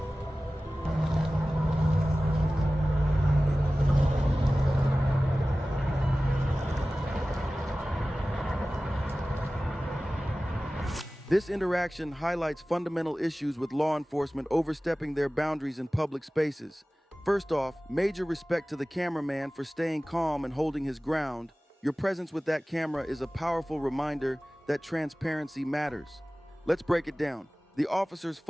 This interaction highlights fundamental issues with law enforcement overstepping their boundaries in public spaces. First off, major respect to the cameraman for staying calm and holding his ground. Your presence with that camera is a powerful reminder that transparency matters. Let's break it down. The officers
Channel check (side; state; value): both; normal; correlation 0.97